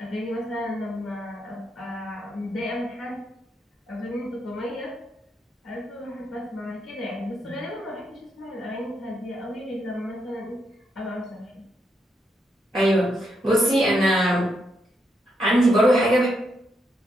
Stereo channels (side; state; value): both; normal; correlation 0.80